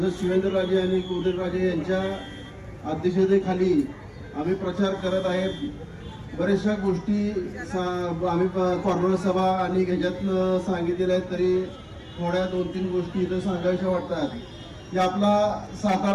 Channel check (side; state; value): both; identical; correlation 1.00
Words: शिवेंद्रराजे आणि उदयनराजे यांच्या अध्यक्षतेखाली आम्ही प्रचार करत आहे. बऱ्याचशा गोष्टी आम्ही कॉर्नर सभा आणि ह्याच्यातनं सांगितलेल्या आहेत, तरी थोड्या 2-3 गोष्टी इथं सांगायच्या वाटतात की आपला